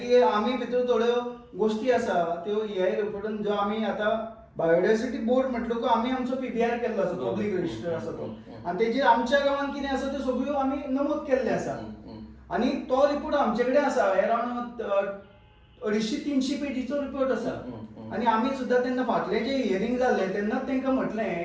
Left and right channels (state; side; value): identical; both; correlation 1.00